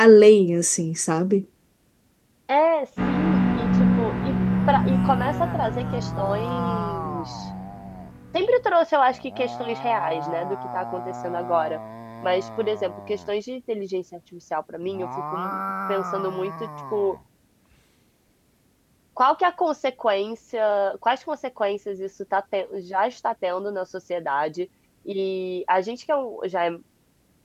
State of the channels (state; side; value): identical; both; correlation 1.00